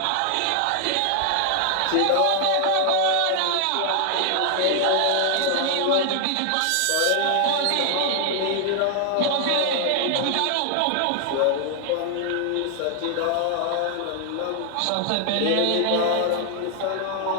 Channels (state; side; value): different; both; correlation 0.00